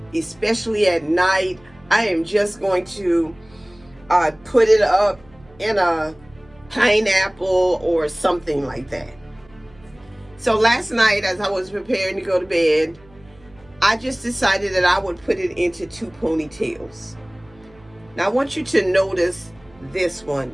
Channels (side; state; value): right; noise; hum, 28 dB below the sound